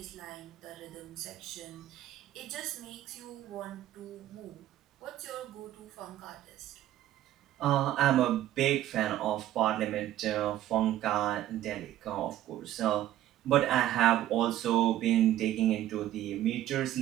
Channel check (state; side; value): quieter; left; 13.3 dB